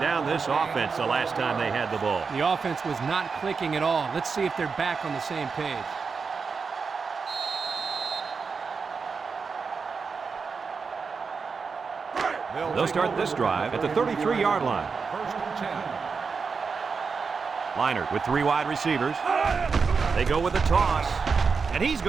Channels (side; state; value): left; quieter; 5.2 dB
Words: this offense the last time they had the ball. The offense was not clicking at all. Let's see if they're back on the same page. They'll start this drive at the 33-yard line. First and 10. Liner with 3 wide receivers. They go with a toss, and he's